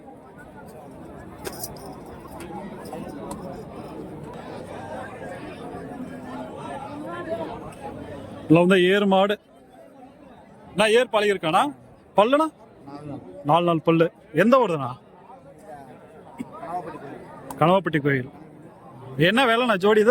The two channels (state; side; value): identical; both; correlation 1.00